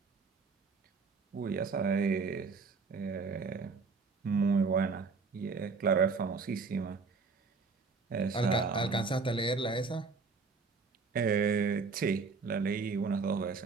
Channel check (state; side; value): quieter; left; 4.6 dB